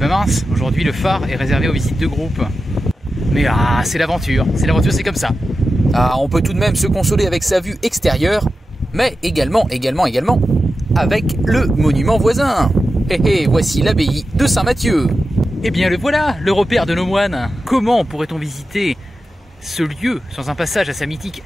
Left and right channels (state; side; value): normal; both; correlation 0.92